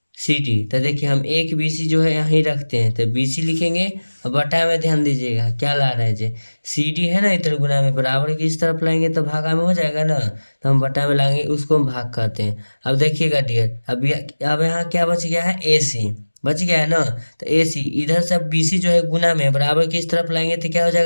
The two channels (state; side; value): inverted; both; correlation -1.00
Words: C D. तो देखिए हम एक बी सी जो है यहीं रखते हैं, तो बी सी लिखेंगे। और बटा में ध्यान दीजिएगा क्या ला रहे हैं जे, सी डी है ना, इधर गुना में बराबर की इस तरफ लाएंगे तो भागा में हो जाएगा ना। तो हम बटा में लाएंगे, उसको हम भाग कहते हैं। अब देखिएगा डियर, अब यहाँ क्या बच गया है? ए सी बच गया है ना। तो ए सी इधर से बी सी जो है गुना में बराबर की इस तरफ लाएंगे तो क्या हो